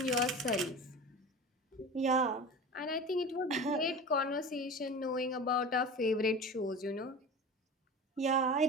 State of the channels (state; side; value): normal; both; correlation 0.32